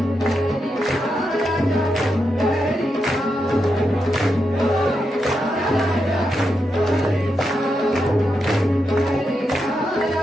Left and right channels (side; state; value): both; normal; correlation 0.85